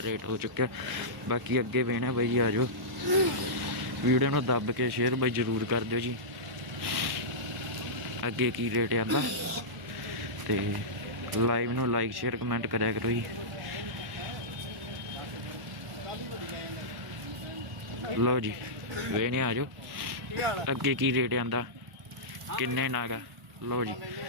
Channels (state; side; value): normal; both; correlation -0.14